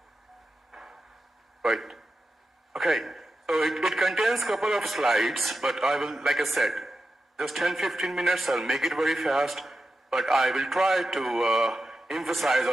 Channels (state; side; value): normal; both; correlation 0.90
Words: Right. Okay. So it contains a couple of slides, but I will, like I said, just 10-15 minutes. I'll make it very fast, but I will try to emphasize